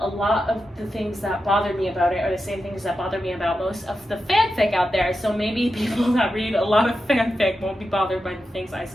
A lot of the things that bother me about it are the same things that bother me about most of the fanfic out there, so maybe people that read a lot of fanfic won't be bothered by the things I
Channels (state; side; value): normal; both; correlation 0.89